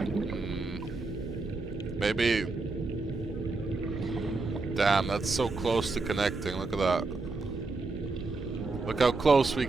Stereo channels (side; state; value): left; quieter; 3.6 dB